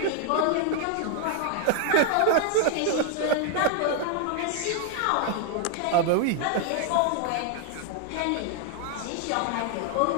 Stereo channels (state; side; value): different; both; correlation 0.00